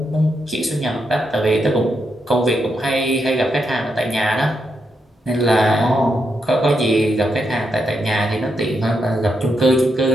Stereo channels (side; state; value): both; normal; correlation 0.82